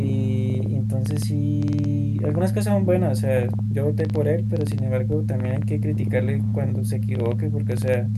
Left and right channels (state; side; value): identical; both; correlation 1.00